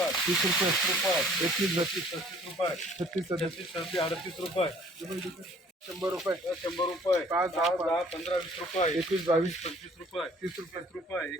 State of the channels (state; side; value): normal; both; correlation 0.56